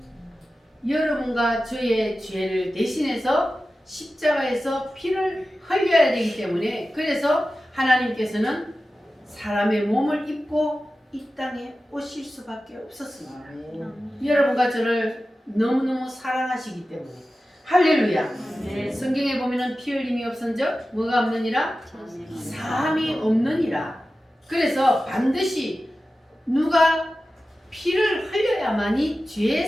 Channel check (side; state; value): both; normal; correlation 0.94